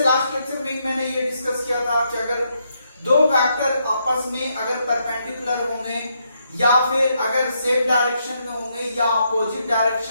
लेक्चर में मैंने ये डिस्कस किया था कि अगर दो वेक्टर आपस में अगर परपेंडिकुलर होंगे या फिर अगर सेम डायरेक्शन में होंगे या अपोजिट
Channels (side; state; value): both; inverted; correlation -0.77